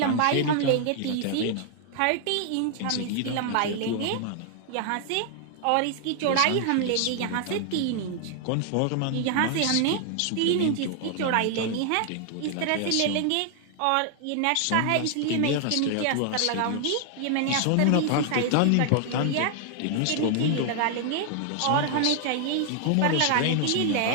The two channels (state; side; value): different; both; correlation 0.00